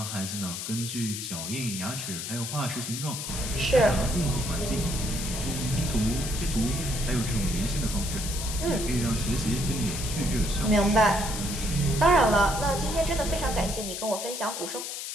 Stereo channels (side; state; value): left; noise; hiss, 6 dB below the sound